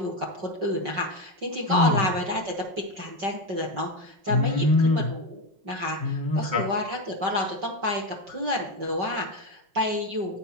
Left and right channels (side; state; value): left; late; 5.5 ms